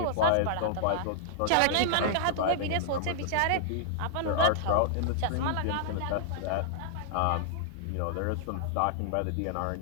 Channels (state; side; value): different; both; correlation -0.01